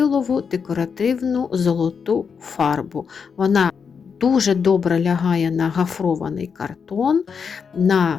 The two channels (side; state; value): right; quieter; 6.2 dB